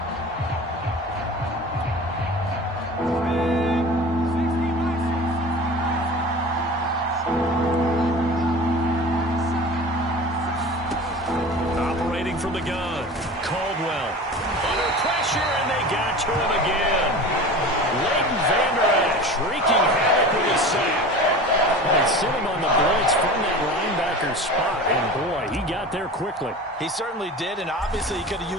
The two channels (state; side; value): normal; both; correlation 0.36